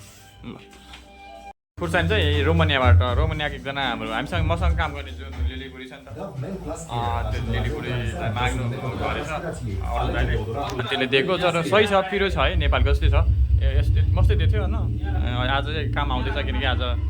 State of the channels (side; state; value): both; identical; correlation 1.00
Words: ल खुर्सानी चाहिँ रोमानियाको एकजना हाम्रो हामीसँग मसँग काम गर्ने जुन लिलीबुढी छ नि त त्यो लिलीबुढीलाई माग्नु गरेछ त्यसले दिएको तर सही छ पिरो छ है नेपालको जस्तै छ यस्तै मस्तै दिएको थियो होइन आज चाहिँ काम आउँदैछ किनकि आज